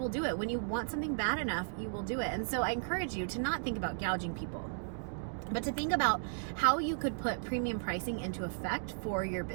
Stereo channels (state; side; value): silent; left; digital silence